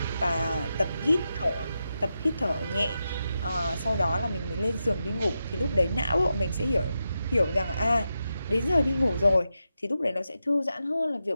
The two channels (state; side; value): inverted; both; correlation -0.88